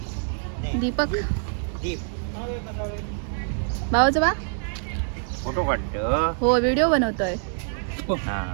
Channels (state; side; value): silent; left; 62 dB below the other